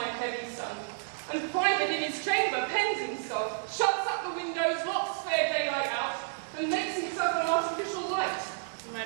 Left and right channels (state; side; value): silent; left; digital silence